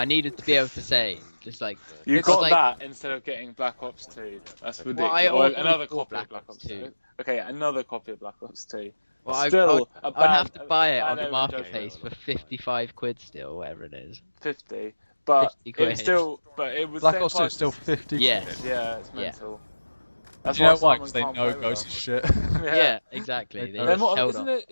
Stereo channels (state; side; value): inverted; both; correlation -1.00